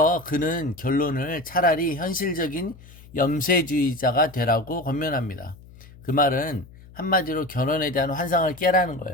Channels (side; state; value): left; noise; hum, 21 dB below the sound